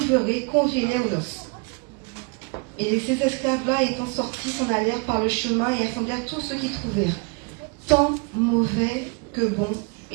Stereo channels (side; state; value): left; quieter; 33.1 dB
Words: conviez-les aux noces. Et ces esclaves-là, étant sortis, s'en allèrent par le chemin et assemblèrent tous ceux qu'ils trouvèrent, tant mauvais que bons,